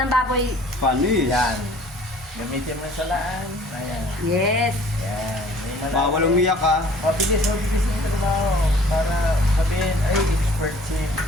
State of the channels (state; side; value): normal; both; correlation 0.53